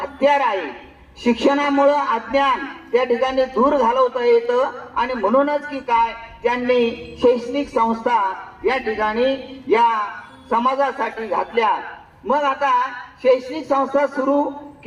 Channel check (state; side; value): identical; both; correlation 1.00